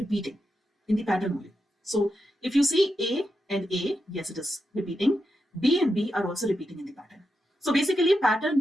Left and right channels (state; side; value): normal; both; correlation 0.86